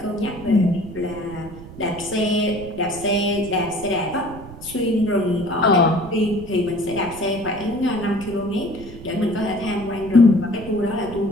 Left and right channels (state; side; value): noise; right; rumble, 15 dB below the sound